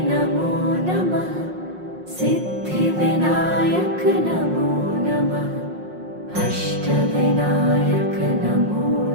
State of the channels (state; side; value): late; left; 5.6 ms